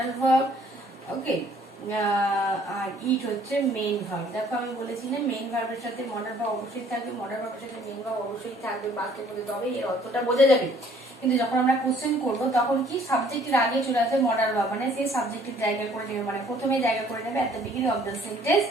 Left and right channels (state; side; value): normal; both; correlation 0.59